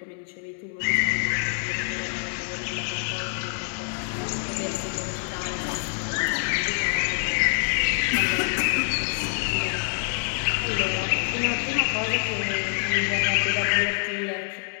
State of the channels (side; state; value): right; silent; digital silence